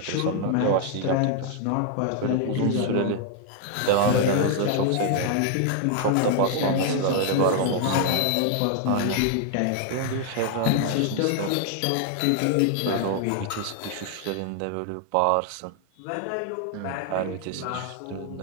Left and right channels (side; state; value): both; different; correlation 0.00